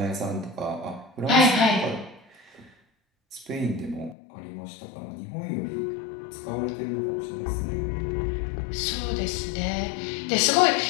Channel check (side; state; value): right; drops out; at 4.2 s